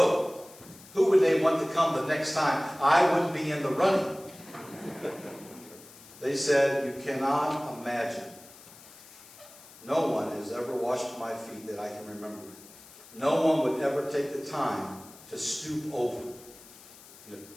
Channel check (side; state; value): left; noise; hiss, 20 dB below the sound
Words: who would they want to come the next time? I wouldn't be in the running. They said, "You cannot imagine. No one has ever washed my feet that I can remember. No one would ever take the time to stoop over,